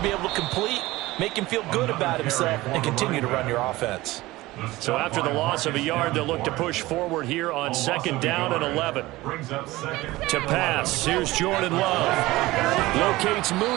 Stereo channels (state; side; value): quieter; left; 18.9 dB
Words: be able to complete, make him feel good about himself, and continue to run your offense. So after the loss of a yard, they'll look to push forward here on 2nd down and 11. To pass, here's Jordan Love. Locates